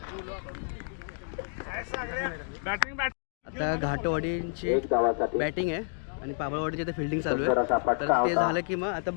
आता घाटवाडींची एक धावासाठी बॅटिंग आहे आणि पाबळवाडीची आता फिल्डिंग चालू आहे. तर ते झालं की मग आता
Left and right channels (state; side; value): silent; right; 57 dB below the other